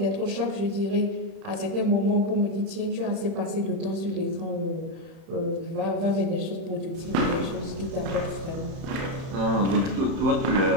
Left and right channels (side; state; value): left; late; 31 ms